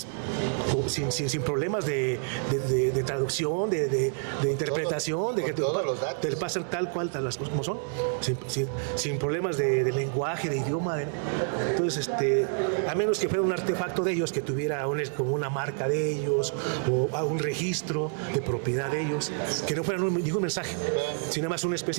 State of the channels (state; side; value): silent; left; 59 dB below the other